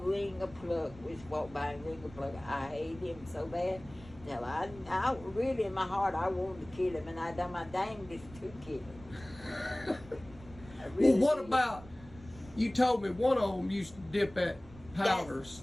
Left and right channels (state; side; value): noise; right; rumble, 19 dB below the sound